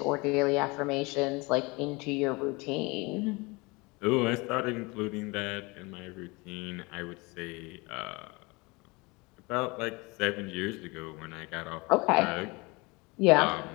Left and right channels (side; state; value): right; quieter; 25.9 dB